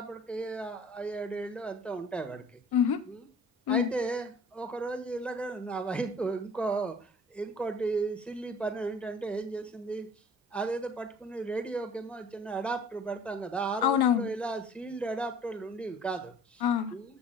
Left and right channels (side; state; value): both; normal; correlation 0.50